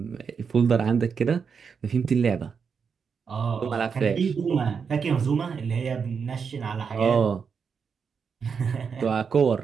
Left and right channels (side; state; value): left; quieter; 6.1 dB